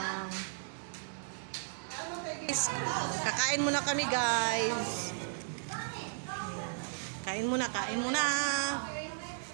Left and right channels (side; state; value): left; silent; digital silence